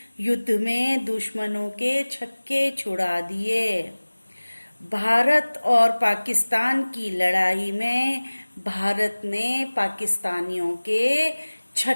युद्ध में दुश्मनों के छक्के छुड़ा दिए। भारत और पाकिस्तान की लड़ाई में भारत ने पाकिस्तानियों के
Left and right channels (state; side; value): inverted; both; correlation -1.00